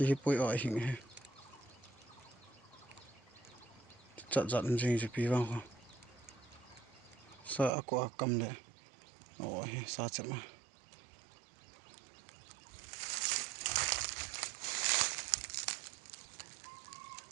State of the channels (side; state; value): left; drops out; at 7.7 s